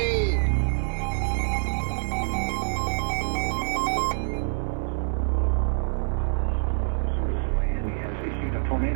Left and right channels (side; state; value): left; silent; digital silence